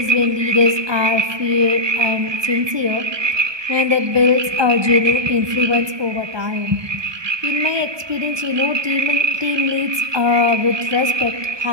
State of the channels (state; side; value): late; left; 1.2 ms